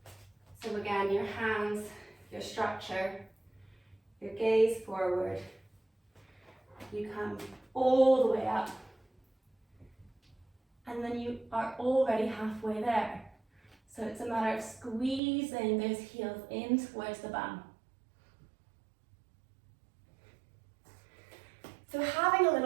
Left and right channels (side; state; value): left; drops out; at 15.2 s